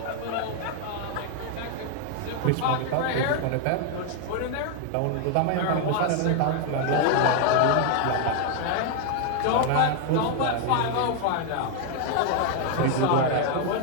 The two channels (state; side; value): different; both; correlation 0.00